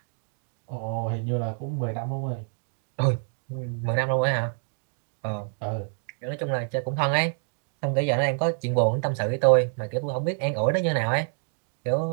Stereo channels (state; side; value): silent; left; 57 dB below the other